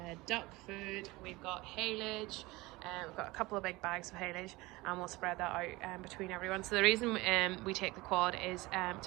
duck food, we've got haylage, we've got a couple of big bags of haylage, and we'll spread that out between everyone. So the reason we take the quad is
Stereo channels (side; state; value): left; quieter; 21.4 dB